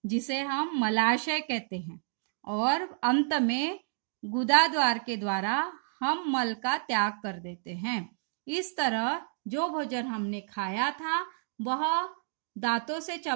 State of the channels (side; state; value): left; silent; digital silence